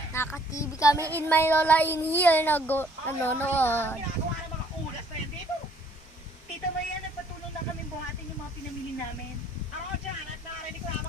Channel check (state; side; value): normal; both; correlation 0.61